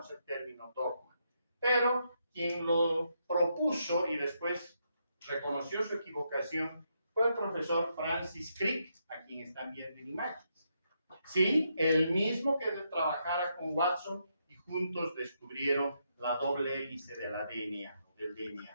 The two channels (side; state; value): both; inverted; correlation -0.79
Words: el término dogma, pero quien lo propuso y después reconoció su equivocación fue el profesor Francis Crick, a quien están viendo en imágenes. Sí, el mismo que trabajara con Watson y juntos descubrieron la doble hélice del